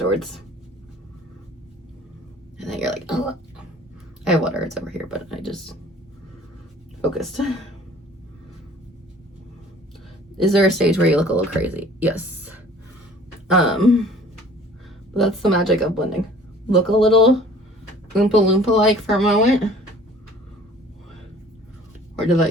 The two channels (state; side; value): normal; both; correlation 0.51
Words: And then you're like, oh. I have water, it's over here, but I just focused. Is there a stage where you look a little crazy? Yes. But that's the magic of blending. Look a little Oompa Loompa-like for a moment. Or to let